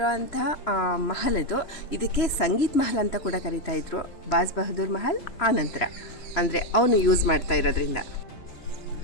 ಅಂಥ ಮಹಲ್ ಇದು. ಇದಕ್ಕೆ ಸಂಗೀತ್ ಮಹಲ್ ಅಂತ ಕೂಡ ಕರೀತಾ ಇದ್ರು. ಬಾಜ್ ಬಹದ್ದೂರ್ ಮಹಲ್ ಆನಂತರ ಅಂದರೆ ಅವನು ಯೂಸ್ ಮಾಡ್ತಾ ಇರೋದ್ರಿಂದ.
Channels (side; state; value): right; late; 2.9 ms